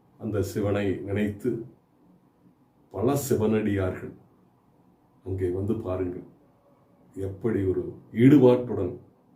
அந்த சிவனை நினைத்து பல சிவனடியார்கள் அங்கே வந்து பாருங்கள், எப்படி ஒரு ஈடுபாட்டுடன்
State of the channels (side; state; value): both; identical; correlation 1.00